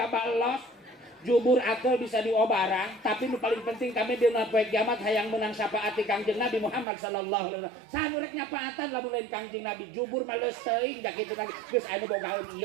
los jubur atel bisa diobarang tapi nu paling penting kami dina poe kiamat hayang menang syafaati Kangjeng Nabi Muhammad sallallahu alaihi wasallam saha rek nyapaatan lamun lain Kangjeng Nabi jubur mah leus teuing da kitu lagi geus anu bogaeun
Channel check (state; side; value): drops out; left; at 6.9 s